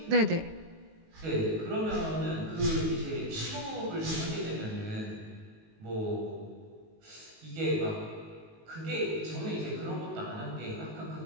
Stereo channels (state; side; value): late; left; 19 ms